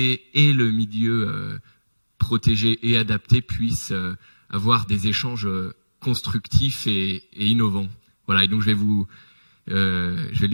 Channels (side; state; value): both; inverted; correlation -1.00